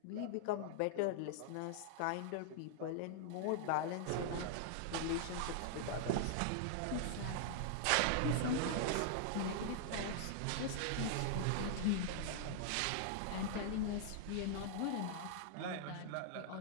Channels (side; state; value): both; different; correlation -0.01